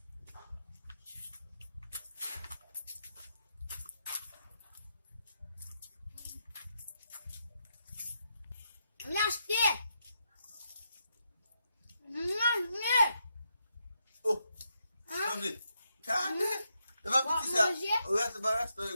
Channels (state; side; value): inverted; both; correlation -0.81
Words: L'acheter. Oh, sabe? Cara, eu vou pedir ça. O resto basta eu